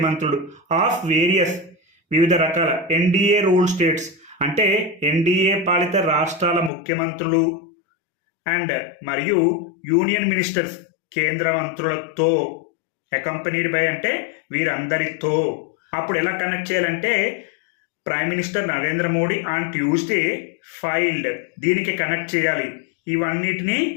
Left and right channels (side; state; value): right; drops out; at 6.7 s